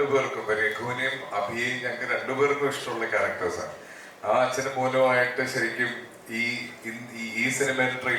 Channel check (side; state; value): both; identical; correlation 1.00